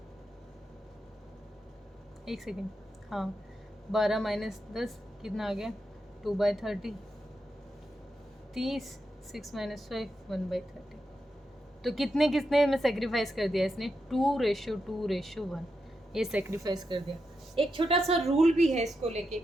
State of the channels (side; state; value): both; normal; correlation 0.86